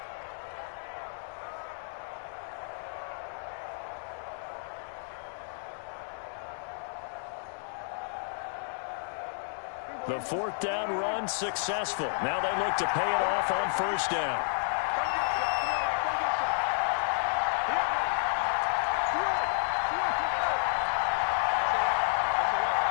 The 4th down run successful. Now they look to pay it off on 1st down.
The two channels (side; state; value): right; silent; digital silence